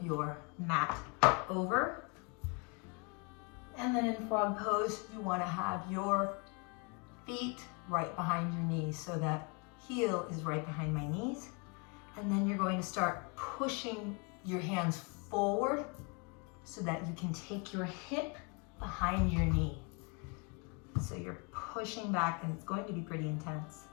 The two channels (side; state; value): right; quieter; 32.1 dB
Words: your mat over. And then in frog pose, you want to have your feet right behind your knees, so that heel is right behind my knees. And then you're going to start pushing your hands forward so that you can take your hip behind your knee. So you're pushing back, and it's going to be pretty intense.